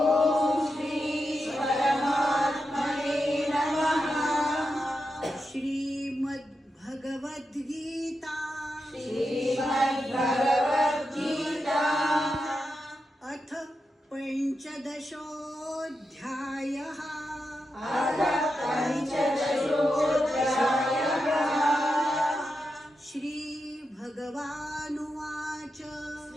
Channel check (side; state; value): both; normal; correlation 0.88